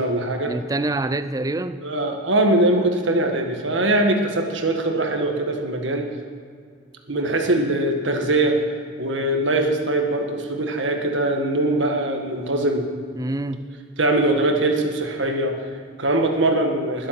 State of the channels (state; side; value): normal; both; correlation 0.08